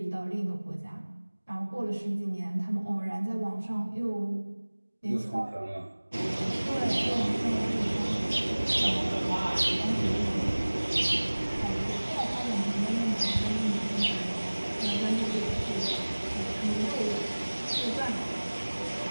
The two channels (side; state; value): both; inverted; correlation -1.00